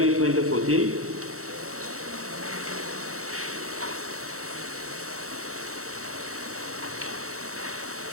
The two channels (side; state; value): left; late; 0.64 ms